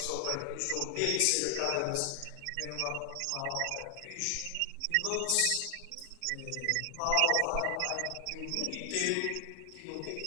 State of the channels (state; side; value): different; both; correlation 0.00